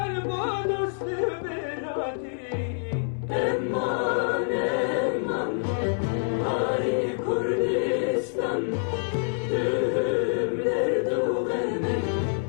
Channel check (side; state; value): right; silent; digital silence